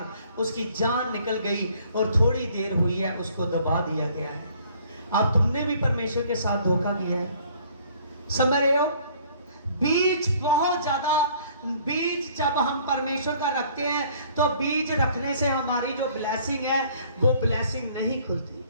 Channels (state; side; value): inverted; both; correlation -0.57